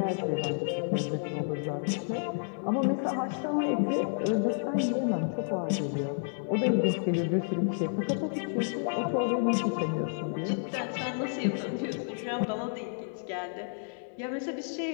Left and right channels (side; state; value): right; silent; 57 dB below the other